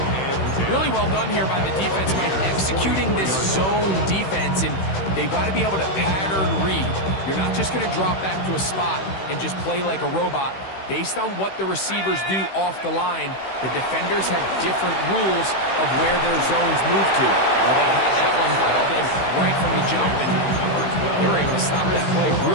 and 10. Really well done here by the defense, Mike, executing this zone defense, and they've got to be able to pattern read. You're not just going to drop back to a spot and just play like a robot. Based on what the receivers do off the line, the defenders have different rules of where their zones move to. Well, they had that one dialed in right from the jump, and they were able to stop that play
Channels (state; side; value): late; right; 16 ms